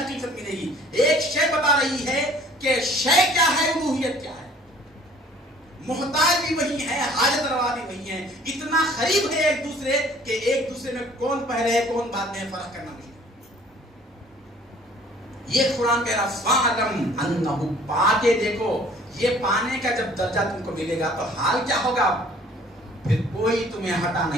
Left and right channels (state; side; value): normal; both; correlation 0.54